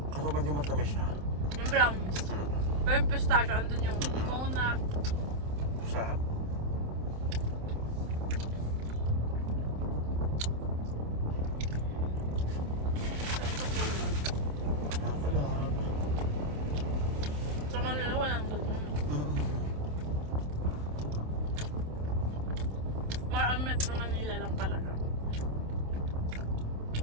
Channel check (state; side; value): late; left; 27 ms